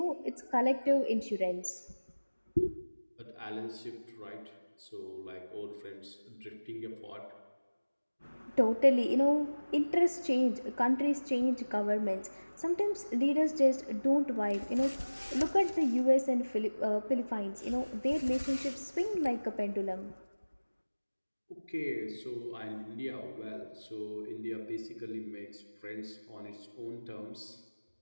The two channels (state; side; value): inverted; both; correlation -1.00